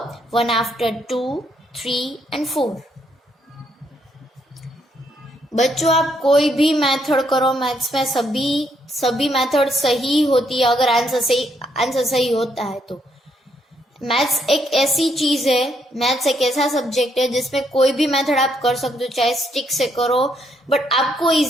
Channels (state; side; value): normal; both; correlation 0.74